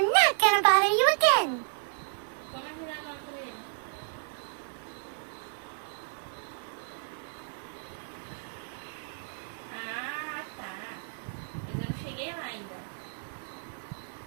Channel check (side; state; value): left; silent; digital silence